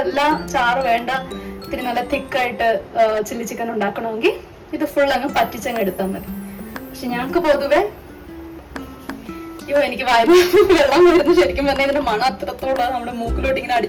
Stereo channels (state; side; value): identical; both; correlation 1.00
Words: എല്ലാം ചാറ് വേണ്ട, ഇത്തിരി നല്ല തിക്കായിട്ട് ചില്ലി ചിക്കൻ ഉണ്ടാക്കണമെങ്കിൽ ഇത് ഫുൾ അങ്ങ് പറ്റിച്ചങ്ങ് എടുത്താൽ മതി. പക്ഷെ ഞങ്ങൾക്ക് പൊതുവെ എനിക്ക് വായിൽ വെള്ളം വരുന്നു. ശരിക്കും പറഞ്ഞാൽ ഇതിന്റെ മണം അത്രത്തോളം നമ്മുടെ മൂക്കിലോട്ട് ഇങ്ങനെ